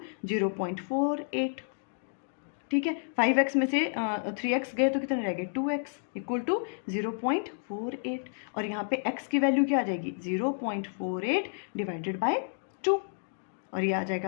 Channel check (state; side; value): silent; right; digital silence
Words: 0.48, ठीक है। 5x में से 3x गए तो कितने रह गए, 2x इक्वल टू 0.48, और यहाँ पे x की वैल्यू क्या आ जाएगी, 0.48 डिवाइडेड बाय 2, और ये आ जाएगा